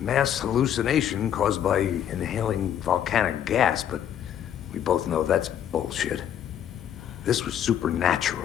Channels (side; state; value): right; quieter; 9.9 dB